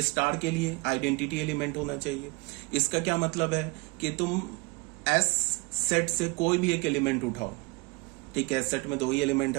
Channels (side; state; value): left; quieter; 27.3 dB